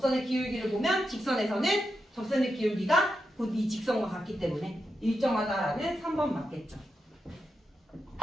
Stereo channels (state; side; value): normal; both; correlation 0.87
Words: 기울기를 보면 직선에서는 접선의 기울기가 곧 이 직선과 같기 때문에 일정하다라는 3번 맞겠죠.